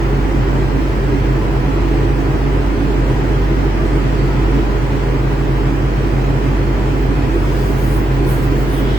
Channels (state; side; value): normal; both; correlation 0.85